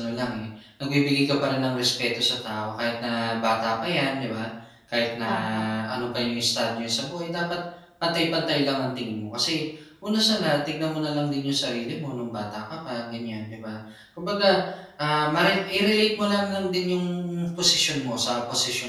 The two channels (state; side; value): identical; both; correlation 1.00